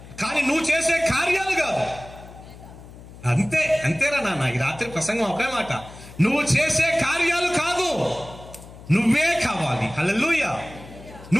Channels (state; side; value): noise; left; hum, 18 dB below the sound